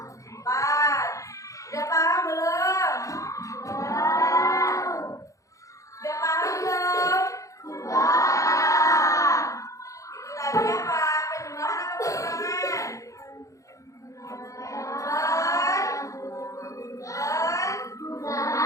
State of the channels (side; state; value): right; late; 0.16 ms